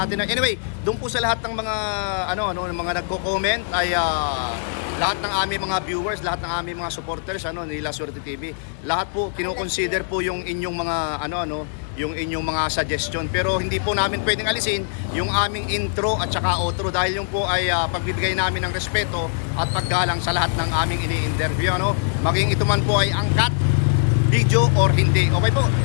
Anyway, doon po sa lahat ng mga mga nagko-comment ay lahat ng aming mga viewers, lahat ng aming mga supporters ni La Suerte TV. Lahat po kino-consider po yung inyong mga yung inyong mga suggestion. Pero hindi po namin pwedeng alisin yung aming intro at saka outro dahil yung po ay pagbibigay namin ng respeto at paggalang sa lahat ng aming ini-interview, maging ito man po ay angkat video or hindi. Okay po,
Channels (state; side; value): silent; right; digital silence